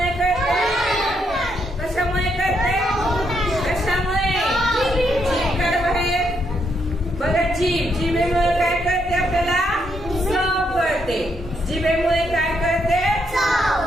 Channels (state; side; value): normal; both; correlation 0.77